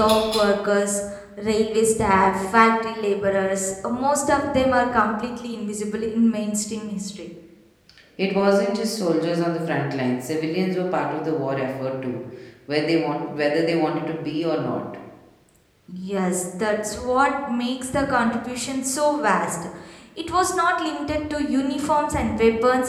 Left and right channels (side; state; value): both; identical; correlation 1.00